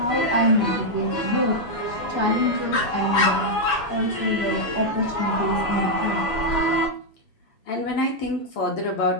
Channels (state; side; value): late; right; 7.0 ms